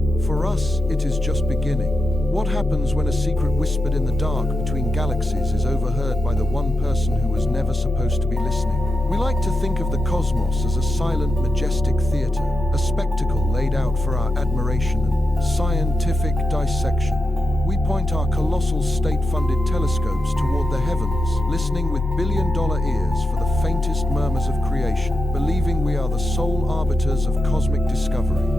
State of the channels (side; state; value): both; normal; correlation 0.88